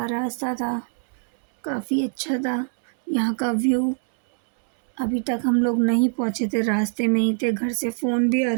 रास्ता था, काफ़ी अच्छा था। यहाँ का व्यू, अभी तक हम लोग नहीं पहुँचे थे, रास्ते में ही थे, घर से फ़ोन भी आ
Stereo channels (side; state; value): left; silent; 60 dB below the other